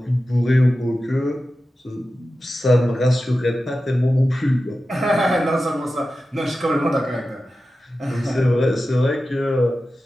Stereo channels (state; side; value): normal; both; correlation 0.93